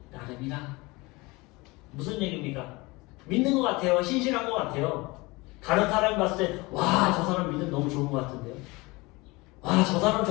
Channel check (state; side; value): quieter; right; 23.7 dB